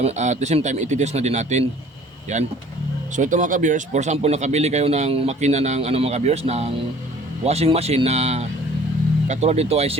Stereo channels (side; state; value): both; normal; correlation 0.51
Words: at the same time, iti-test na din natin. Yan. So ito mga ka-viewers, for example, nakabili kayo ng makina ng mga ka-viewers, ng washing machine na katulad dito ay